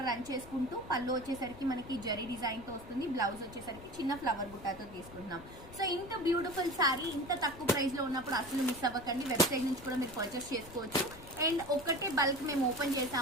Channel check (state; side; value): noise; left; rumble, 17 dB below the sound